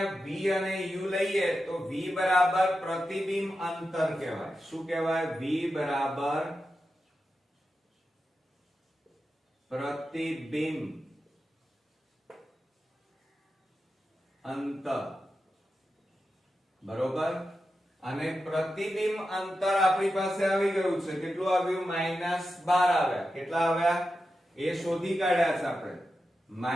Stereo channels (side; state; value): both; normal; correlation 0.90